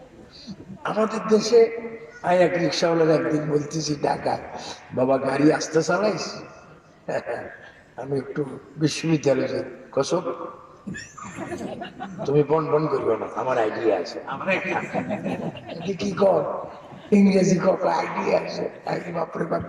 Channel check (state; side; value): identical; both; correlation 1.00